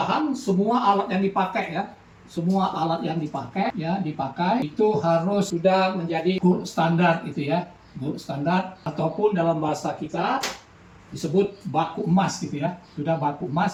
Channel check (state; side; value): identical; both; correlation 1.00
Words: semua alat yang dipakai ya, semua alat yang dipakai itu harus sudah menjadi gold standar gitu ya, gold standar, ataupun dalam bahasa kita disebut baku emas gitu ya, sudah baku